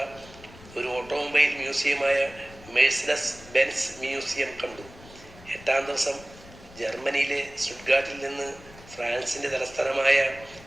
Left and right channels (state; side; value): noise; left; rumble, 20 dB below the sound